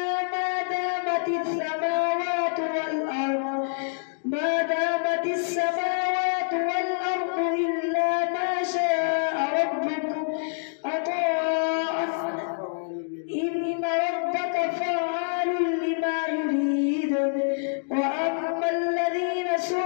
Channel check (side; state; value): right; silent; digital silence